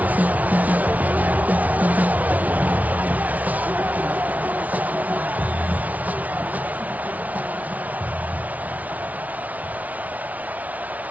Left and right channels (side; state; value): left; late; 0.072 ms